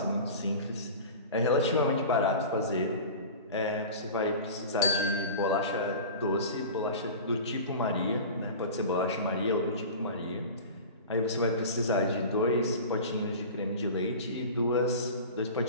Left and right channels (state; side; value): inverted; both; correlation -0.35